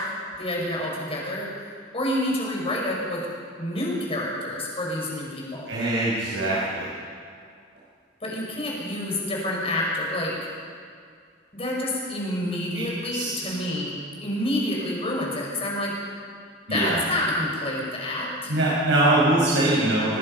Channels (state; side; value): normal; both; correlation 0.31